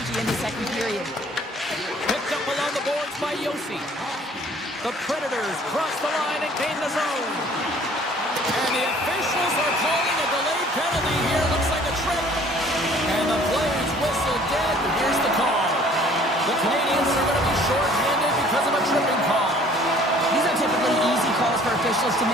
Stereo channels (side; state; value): both; normal; correlation 0.54